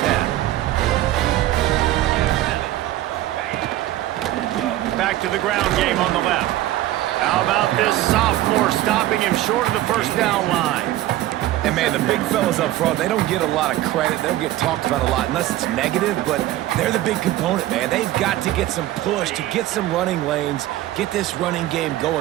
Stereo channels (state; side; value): quieter; left; 14.9 dB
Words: 10. Back to the ground game on the left. How about this sophomore stopping him short of the first down line? And, man, the big fellas up front, they don't get a lot of credit. They don't get talked about a lot unless it's negative, but they're the big component, man. They've got to get some push, to get some running lanes, get this running game